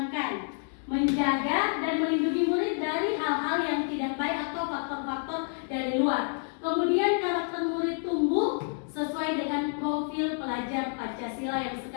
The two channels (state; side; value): silent; right; 59 dB below the other